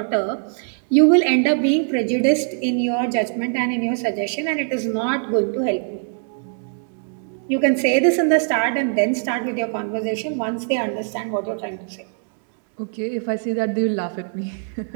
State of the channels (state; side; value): silent; left; 64 dB below the other